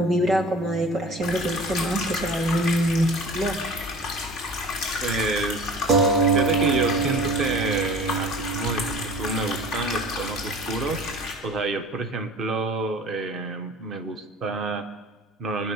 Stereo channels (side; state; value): both; normal; correlation 0.42